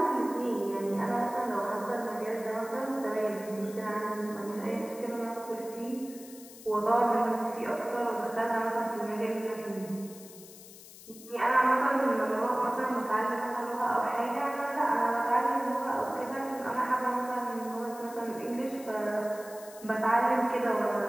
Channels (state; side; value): noise; left; hiss, 18 dB below the sound